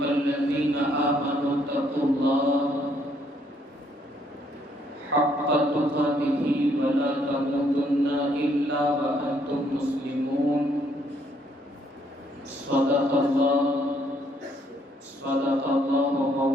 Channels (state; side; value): normal; both; correlation 0.68